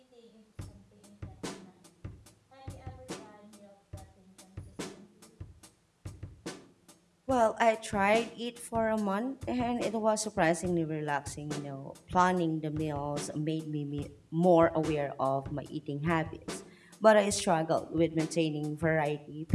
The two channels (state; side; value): identical; both; correlation 1.00